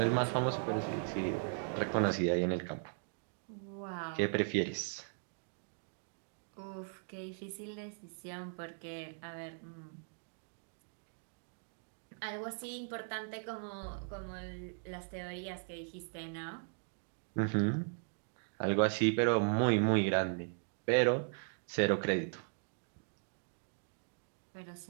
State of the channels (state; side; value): silent; left; digital silence